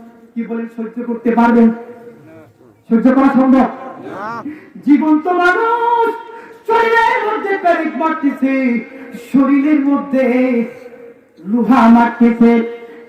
কি বলেন, সহ্য করতে পারবেন? সহ্য করা সম্ভব না। জীবন্ত মানুষ শরীরের মধ্যে পেরেক মারতেছে, শরীরের মধ্যে লোহা মারতেছে।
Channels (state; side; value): identical; both; correlation 1.00